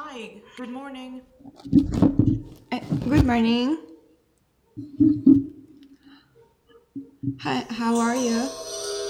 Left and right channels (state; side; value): identical; both; correlation 1.00